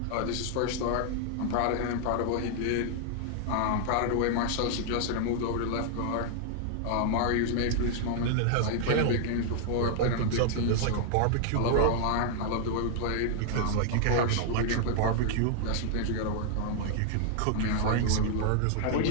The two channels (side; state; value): both; different; correlation 0.00